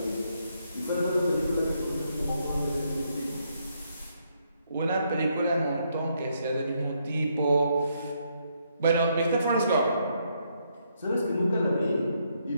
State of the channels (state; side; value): inverted; both; correlation -0.75